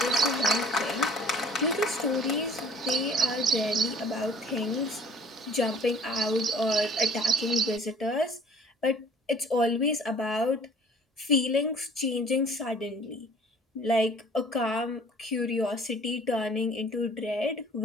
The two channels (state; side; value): normal; both; correlation 0.52